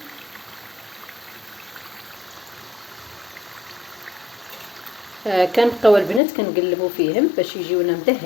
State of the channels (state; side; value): drops out; right; at 6.2 s